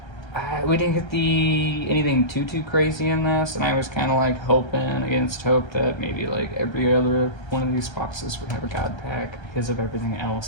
We didn't get anything too crazy in this, and I was kind of like hoping against hope that maybe like every other one of these boxes would have a god pack because of everything else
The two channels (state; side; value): late; right; 1.3 ms